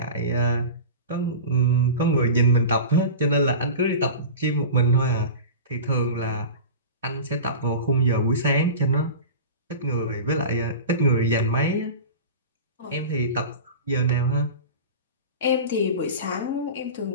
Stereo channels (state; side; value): inverted; both; correlation -0.32